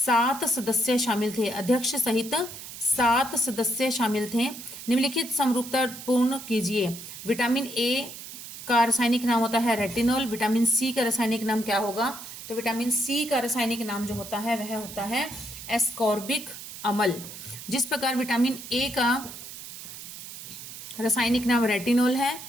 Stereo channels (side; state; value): right; noise; hiss, 12 dB below the sound